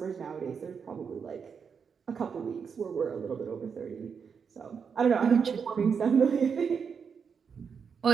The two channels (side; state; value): left; quieter; 6.3 dB